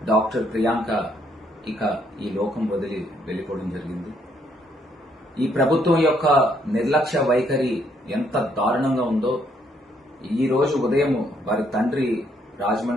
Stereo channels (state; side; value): normal; both; correlation 0.71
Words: డాక్టర్ ప్రియాంక ఇక ఈ లోకం వదిలి వెళ్ళిపోవడం జరిగింది. ఈ ప్రభుత్వం యొక్క నిర్లక్ష్య వైఖరి ఎంత దారుణంగా ఉందో ఈ రోజు ఉదయం వారి తండ్రి